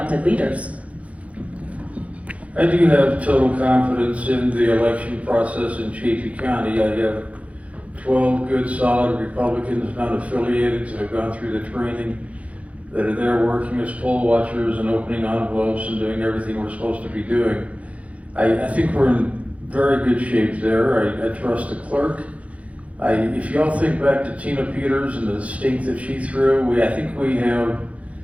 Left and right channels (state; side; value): late; left; 0.065 ms